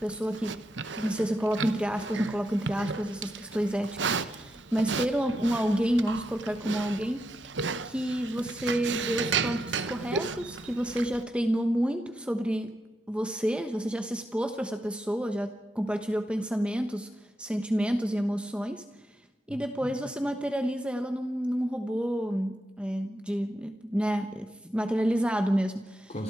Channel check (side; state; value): both; normal; correlation 0.84